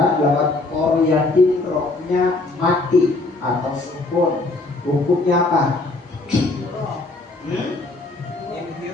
lafaz qaryati rohnya mati atau sukun. Hukumnya apa?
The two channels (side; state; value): right; quieter; 3.2 dB